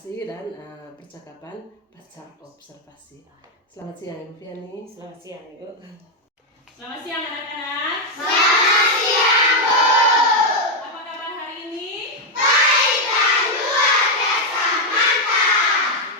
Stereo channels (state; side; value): normal; both; correlation 0.02